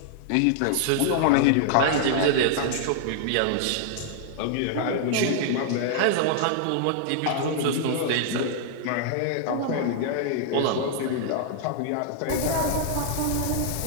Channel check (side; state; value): both; different; correlation -0.01